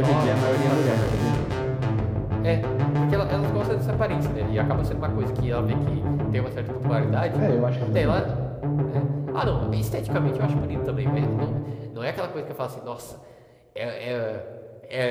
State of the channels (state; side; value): identical; both; correlation 1.00